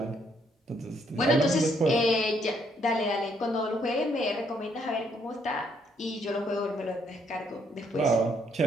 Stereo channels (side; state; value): both; normal; correlation 0.71